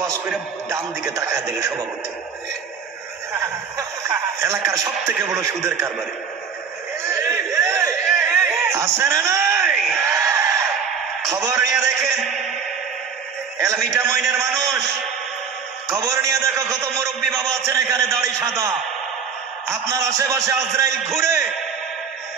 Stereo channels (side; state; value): left; quieter; 6.4 dB